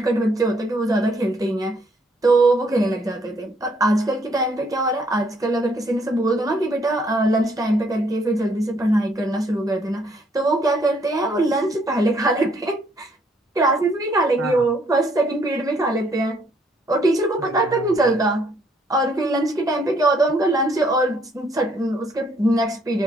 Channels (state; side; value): normal; both; correlation 0.68